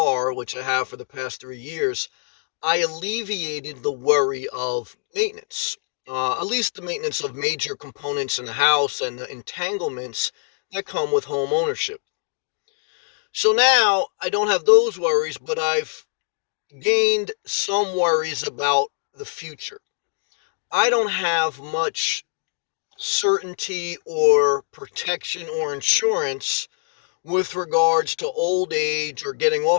which I have for the past 3 years, I alleviated the worry of maintenance, at least the maintenance of major components in the house and the entanglements that come with home ownership. So now I don't have those worries, but I've gained some worries about the future. I don't have much certainty or protection or insurance with regards to old age or getting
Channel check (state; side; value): silent; right; 63 dB below the other